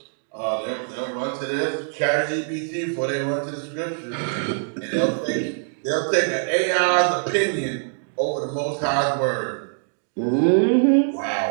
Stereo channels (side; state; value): left; silent; digital silence